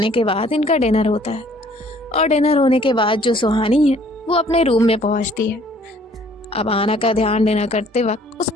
के बाद इनका डिनर होता है और डिनर होने के बाद जो सुहानी है वो अपने रूम में पहुंचती है। अब आना का ध्यान डिनर करते वक्त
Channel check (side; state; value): both; normal; correlation 0.58